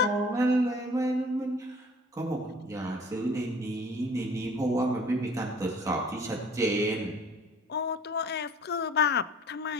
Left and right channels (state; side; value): normal; both; correlation 0.49